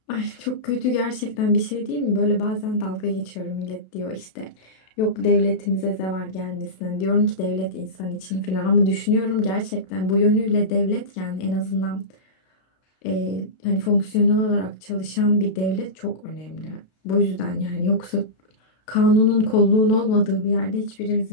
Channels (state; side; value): late; right; 32 ms